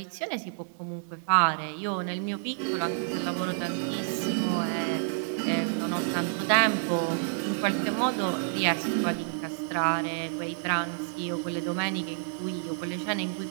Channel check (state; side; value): silent; left; digital silence